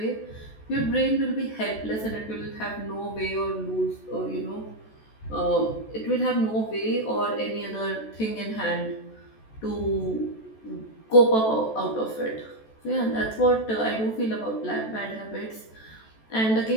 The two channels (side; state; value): right; late; 14 ms